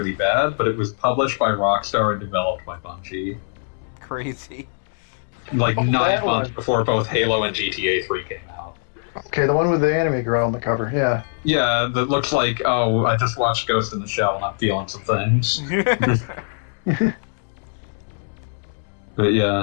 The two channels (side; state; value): right; silent; digital silence